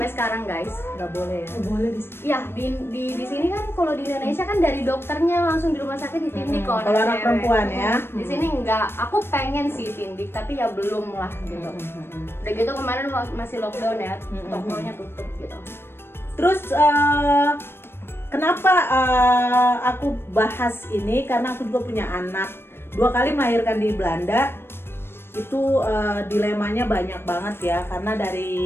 sekarang guys. Nggak boleh ya? Nggak boleh Iya, di sini kan kalau di Indonesia kan dari dokternya langsung di rumah sakit ditindik kalau anak perempuan ya. Di sini enggak. Aku pengen sih tindik tapi ya belum lah gitu. Udah gitu kemarin masih lockdown ya, tokonya tutup gitu. Terus kenapa aku bahas ini? Karena aku juga punya anak, 2 kali melahirkan di Belanda. Itu dilemanya banyak banget ya, karena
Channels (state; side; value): late; right; 0.11 ms